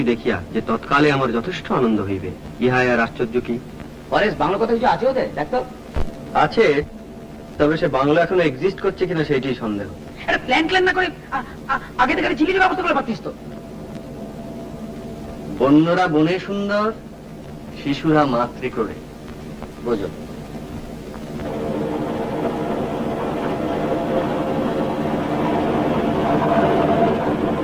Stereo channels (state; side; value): identical; both; correlation 1.00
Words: দেখিয়া যে তৎকালে আমার যথেষ্ট আনন্দ হইবে, ইহাই আর আশ্চর্য কি? পরেশ, বাংলা কথা কিছু আছে ওদের? দেখতো আছে, তবে সে বাংলা এখনো এক্সিস্ট করছে কিনা সেইটাই সন্দেহ। প্ল্যান প্ল্যান না করে আগে থেকে ঝিলির ব্যবস্থা করে পারতিস তো। বন্যরা বনে সুন্দর, শিশুরা মাতৃ করে, বোঝো।